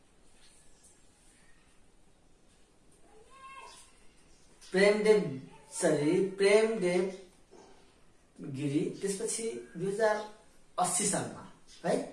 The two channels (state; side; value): identical; both; correlation 1.00